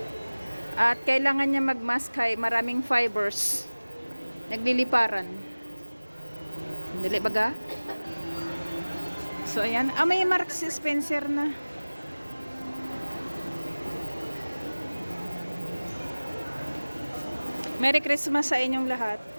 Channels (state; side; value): inverted; both; correlation -1.00